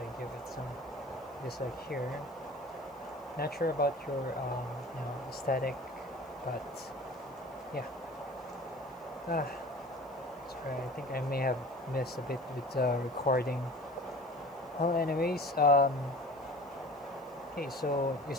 give it some just like here. Not sure about your aesthetic, but yeah. Sorry, I think I may have missed a bit with recording. Well, anyways, okay, so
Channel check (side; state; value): right; noise; hiss, 28 dB below the sound